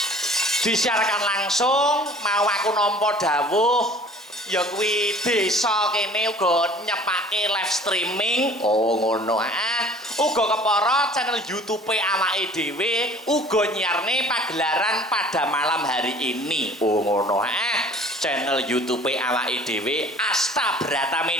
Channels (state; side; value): normal; both; correlation 0.49